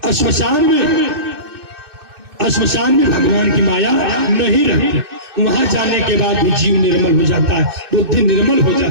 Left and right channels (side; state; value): left; late; 2.6 ms